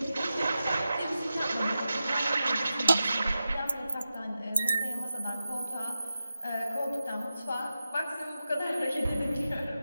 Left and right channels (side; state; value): both; inverted; correlation -0.92